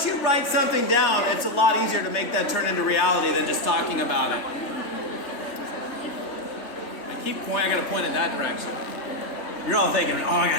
you write something down, it's a lot easier to make that turn into reality than just talking about it. I gotta point in that direction. You're all thinking, oh, I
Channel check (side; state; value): right; late; 3.2 ms